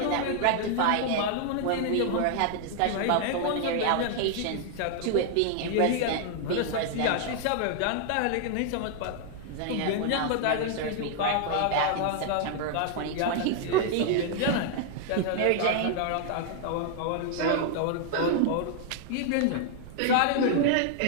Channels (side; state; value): both; different; correlation 0.00